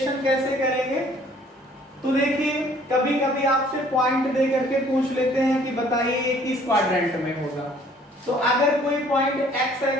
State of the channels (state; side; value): normal; both; correlation 0.57